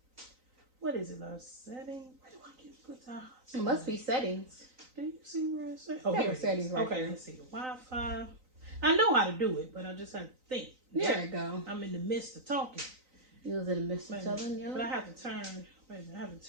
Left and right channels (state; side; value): late; left; 3.9 ms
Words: What is it, love? Settings? Where do I get put the hotspot? It must be settings. Do you see where it's at? Oh, here it settings. Right okay, there. Let's see. Wi-Fi. I know how to do it, but I just have to think. There you go. I'm in the midst of talking. You was in the midst of telling you. But I have to